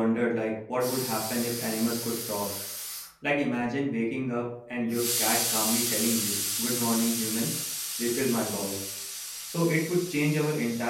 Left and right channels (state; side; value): identical; both; correlation 1.00